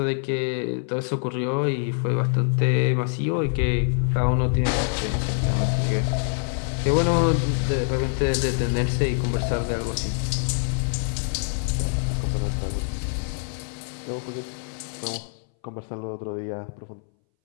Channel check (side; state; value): right; silent; 61 dB below the other